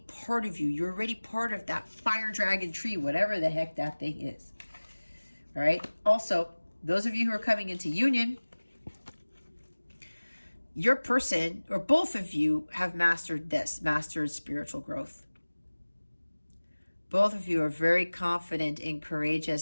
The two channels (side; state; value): both; inverted; correlation -1.00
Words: part of you. You're already part of that fire dragon tree, whatever the heck that thing is, all right? Also, those of you who are coming into union, your person or both of you have mastered this, mastered spiritual growth. Both of you are very confident and